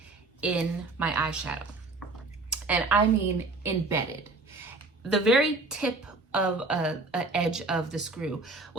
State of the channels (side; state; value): left; quieter; 3.3 dB